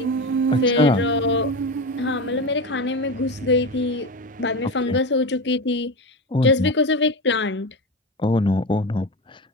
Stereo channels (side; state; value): both; normal; correlation 0.21